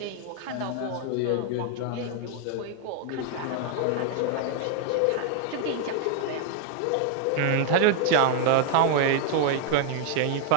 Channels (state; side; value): different; both; correlation 0.00